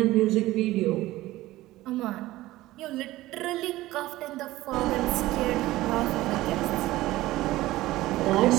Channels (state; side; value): quieter; left; 17.1 dB